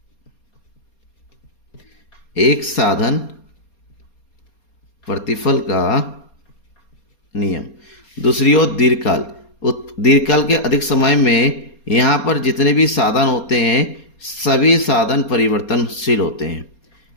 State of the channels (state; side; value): late; right; 4.3 ms